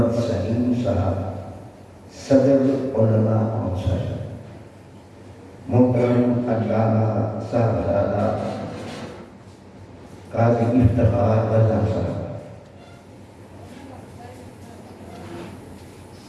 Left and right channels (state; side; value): identical; both; correlation 1.00